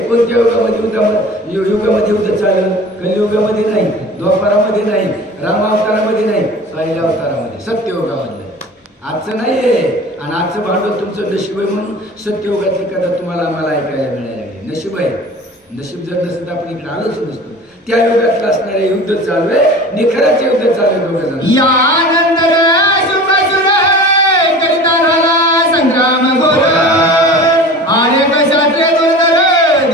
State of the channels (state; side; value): normal; both; correlation 0.39